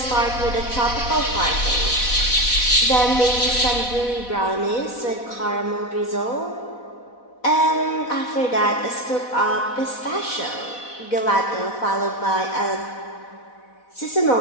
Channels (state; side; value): late; right; 4.1 ms